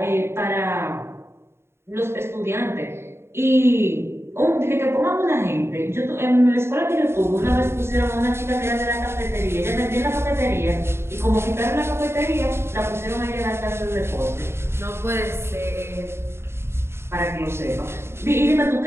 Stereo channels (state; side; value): late; left; 0.12 ms